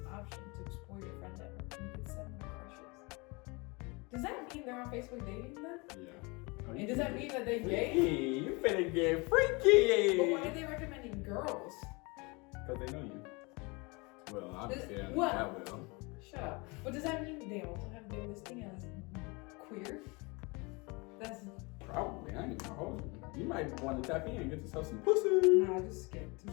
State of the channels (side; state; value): right; quieter; 27.7 dB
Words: option to explore your friend network, and you can send them crushes. Does that mean they're on Facebook dating then? Yeah. And does that mean that they gay? You finna get freaky. But why are they recommending girls? Because they know you. Well, obviously, I know what? that will. Shut up. But does that mean they also have their listing as queer? That's probably. I ain't gonna hold you. You might want to tap in and get yourself some pussy. Nah, I just skipped.